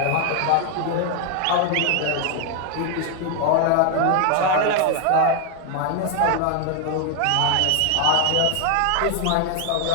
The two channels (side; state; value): both; different; correlation 0.00